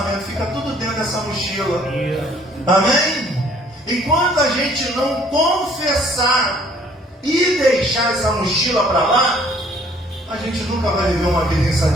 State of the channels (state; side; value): normal; both; correlation 0.59